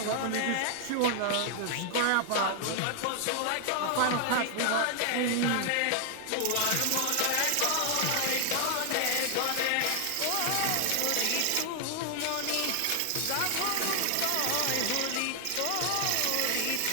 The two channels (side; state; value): both; different; correlation 0.00